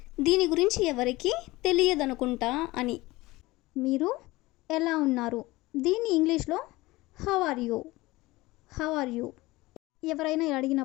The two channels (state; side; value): quieter; right; 20.1 dB